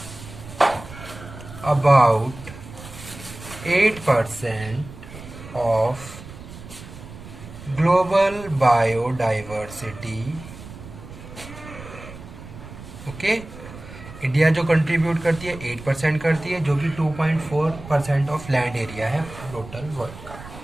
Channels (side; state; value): right; noise; rumble, 15 dB below the sound